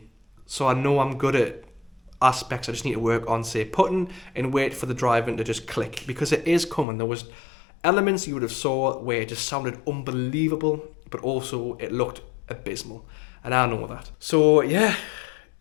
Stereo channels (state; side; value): drops out; right; at 6.9 s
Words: So I know I'm good at aspects I just need to work on, say putting, and wait for the driving to just click, because it is coming. There was elements you would have saw where it just sounded unbelievable, but also it looked abysmal, and I know that. So yeah,